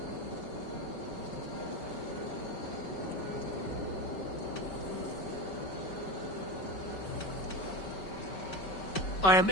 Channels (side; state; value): right; late; 5.2 ms